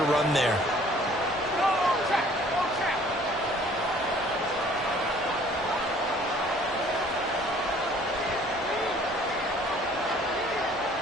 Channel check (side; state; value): both; normal; correlation 0.55